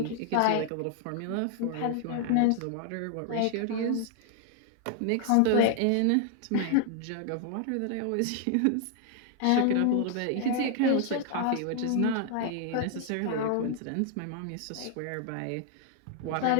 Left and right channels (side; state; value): both; different; correlation 0.00